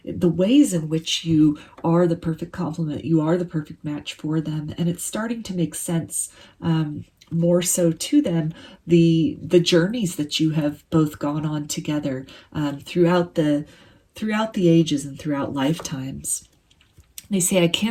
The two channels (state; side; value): identical; both; correlation 1.00